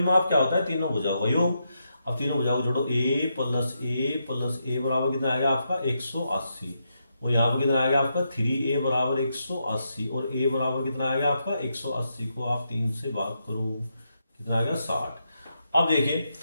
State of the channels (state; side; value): inverted; both; correlation -0.82